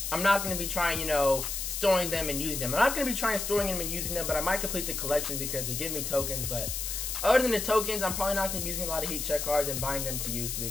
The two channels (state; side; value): noise; left; hiss, 3 dB below the sound